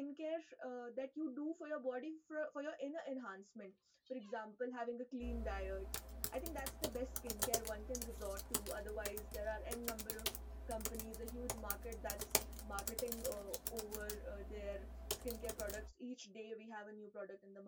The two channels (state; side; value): identical; both; correlation 1.00